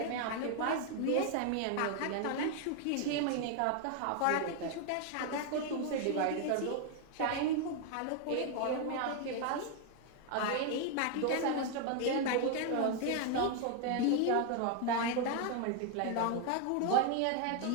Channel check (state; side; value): different; both; correlation 0.00